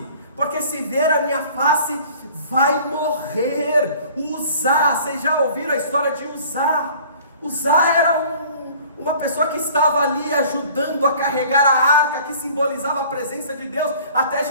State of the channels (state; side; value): inverted; both; correlation -0.49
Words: porque se ver a minha face, vai morrer. Uzá, vocês já ouviram a história de Uzá? Uzá era uma pessoa que estava ali ajudando a carregar a arca, que simbolizava a presença de Deus, até